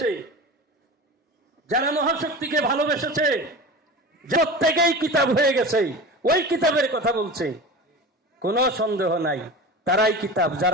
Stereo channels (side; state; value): both; normal; correlation 0.31